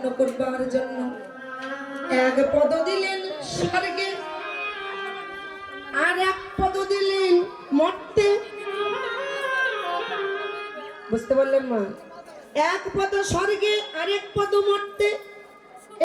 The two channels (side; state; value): both; identical; correlation 1.00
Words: করবার জন্য 1 পদ দিলেন স্বর্গে, আর 1 পদ দিলেন মর্তে। বুঝতে পারলেন মা? 1 পদ স্বর্গে আর 1 পদ মর্তে।